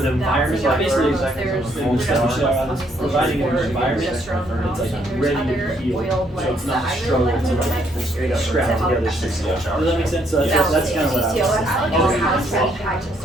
environment, like basically, the stuff you are providing an environment, it's like ready to heal, so it's not a struggle to like scrap together things. Does that make sense? So that's kind of what I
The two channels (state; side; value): normal; both; correlation 0.70